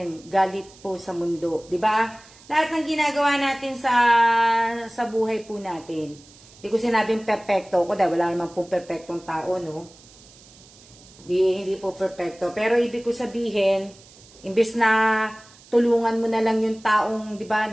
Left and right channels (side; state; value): right; noise; hiss, 24 dB below the sound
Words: galit po sa mundo, 'di ba? Lahat ng ginagawa natin sa buhay po natin, Hindi ko sinabing perfecto ko dahil wala namang pong perfectong tao, no? Hindi po perfecto. Pero ibig ko sabihin, imbes na tulungan mo na lang yung taong, di ba,